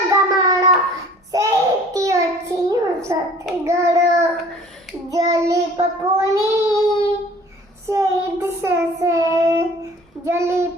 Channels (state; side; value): normal; both; correlation 0.50